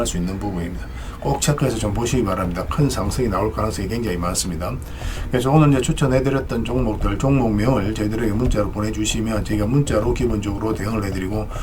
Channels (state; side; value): identical; both; correlation 1.00